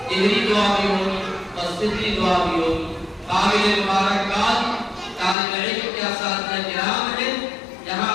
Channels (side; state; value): right; drops out; at 5.4 s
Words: ظہری دعا بھی ہوگی اور سری دعا بھی ہوگی. قابل مبارکباد طالب علم کے اساتذہ کرام ہیں. جہاں